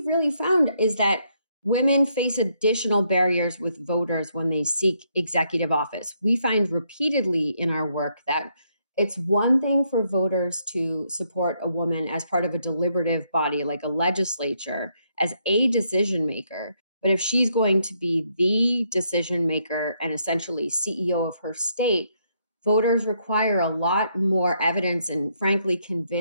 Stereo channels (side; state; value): both; inverted; correlation -0.75